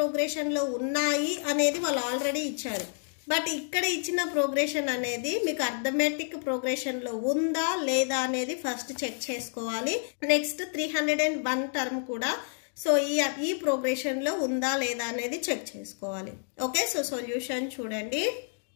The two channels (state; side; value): silent; right; digital silence